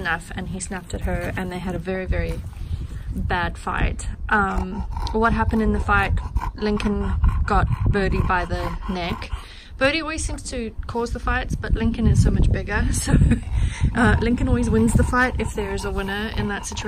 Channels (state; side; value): identical; both; correlation 1.00